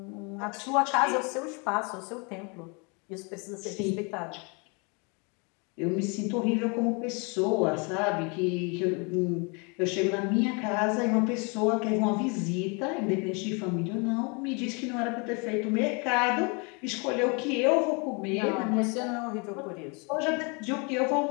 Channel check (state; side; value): quieter; right; 32.3 dB